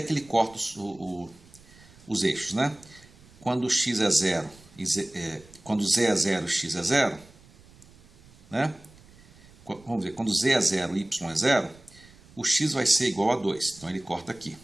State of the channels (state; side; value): noise; right; rumble, 25 dB below the sound